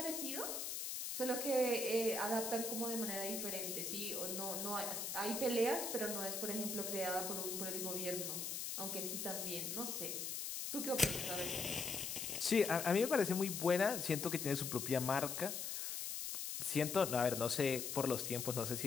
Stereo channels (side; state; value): left; noise; hiss, 3 dB below the sound